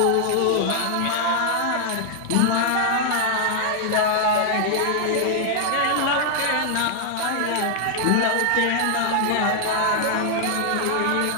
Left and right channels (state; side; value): different; both; correlation 0.00